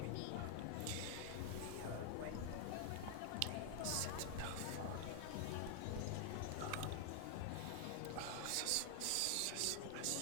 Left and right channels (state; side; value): different; both; correlation 0.00